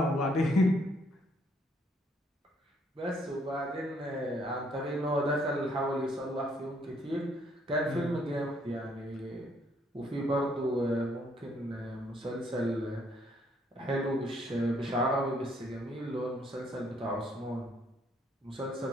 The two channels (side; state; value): both; normal; correlation 0.68